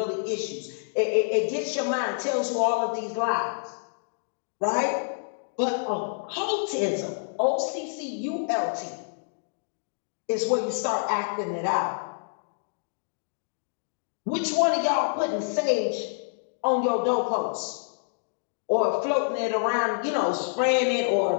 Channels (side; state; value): right; silent; digital silence